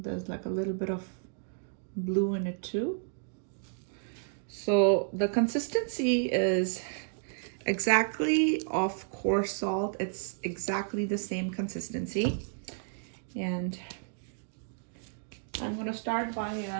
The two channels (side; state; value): left; silent; digital silence